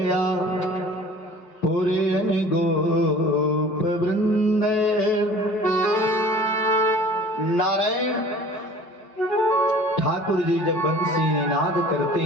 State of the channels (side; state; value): right; late; 5.2 ms